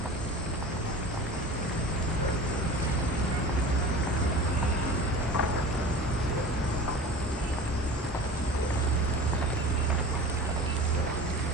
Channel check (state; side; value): normal; both; correlation 0.37